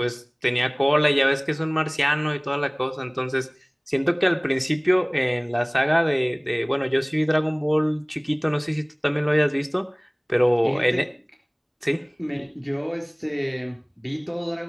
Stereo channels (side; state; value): both; identical; correlation 1.00